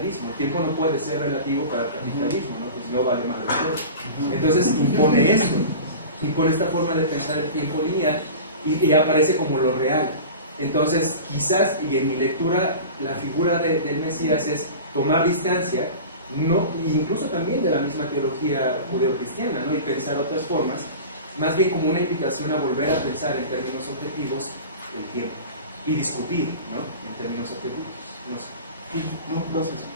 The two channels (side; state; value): both; inverted; correlation -0.34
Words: El tiempo no puede ser relativo para el capitalismo, ¿no? Pues no vale más de todo. Entonces impone esto, impone esta forma de pensar el tiempo lineal y aparece como lo real. Entonces quizás, y en mi lectura, la figura del Mesías es tomar distancia, no, incluso también de la misma teología judeocristiana, ¿no? Y pensar otras formas, más bien como una invitación a volver a pensar en términos objetivos el tiempo y discutir, ¿no? En términos objetivos. No sé. No, gracias.